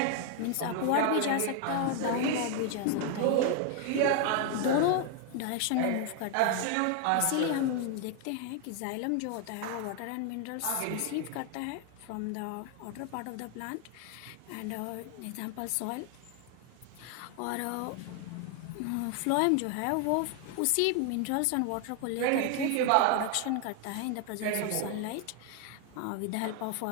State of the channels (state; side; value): different; both; correlation 0.00